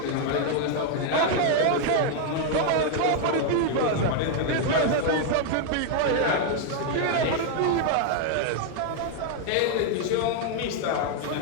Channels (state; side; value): different; both; correlation 0.00